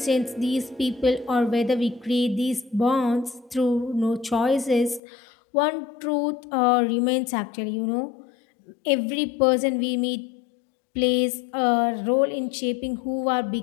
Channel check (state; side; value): drops out; right; at 5.0 s